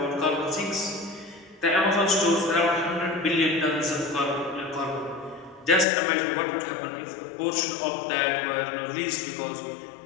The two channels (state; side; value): drops out; right; at 5.9 s